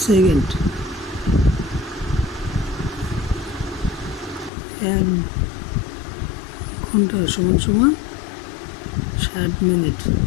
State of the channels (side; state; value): right; drops out; at 4.5 s